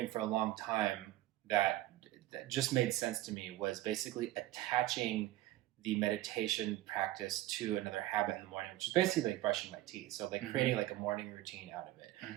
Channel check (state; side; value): quieter; left; 15.8 dB